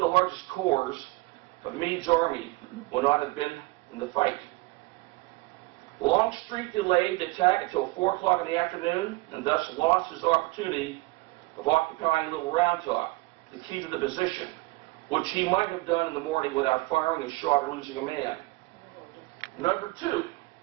largest corps of Meade's army would not have been in the fight. Longstreet delayed the attack until 4 o'clock in the afternoon and thus lost his opportunity of occupying Little Round Top, the key to the position, which he might have done in the morning without firing a shot or losing a man. Number 2,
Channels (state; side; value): quieter; left; 22.5 dB